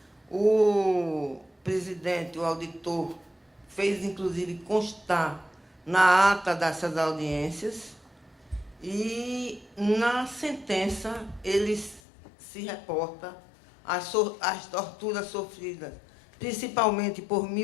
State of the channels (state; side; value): drops out; right; at 12.0 s